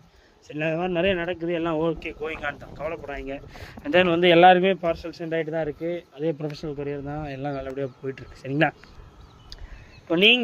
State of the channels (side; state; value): both; identical; correlation 1.00